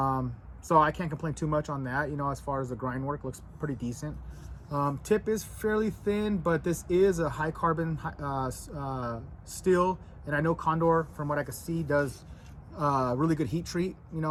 So I can't complain too much on that. You know, as far as the grind work, looks pretty decent. Tip is fairly thin, but this is a high carbon steel, and I know Condor, from what I can see, does really good heat treat. You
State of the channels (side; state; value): both; identical; correlation 1.00